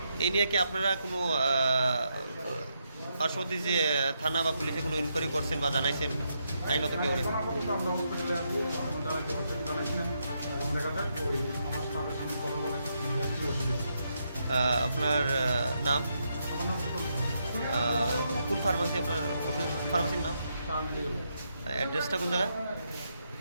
এই নিয়ে কি আপনারা কোনো পার্শ্ববর্তী যে থানা বা পুলিশে কোনো ইনকোয়ারি করছেন বা জানাইছেন আইনত কেউ আমরা হসপিটালে আছি জানাইছি না এবং দেখা যাক ওই আমার স্টাফের সঙ্গে কথা বলে কী অসুবিধা। আপনার নাম, আমার নাম প্রকল্প কোন ফার্মাসি, আপনার ফার্মাসির নাম, স্টার মেডিকেল অ্যাড্রেসটা কোন জায়গায়?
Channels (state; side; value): inverted; both; correlation -0.80